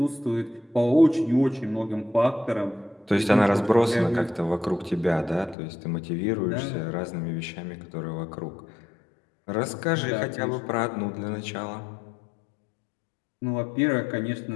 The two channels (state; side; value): drops out; right; at 5.6 s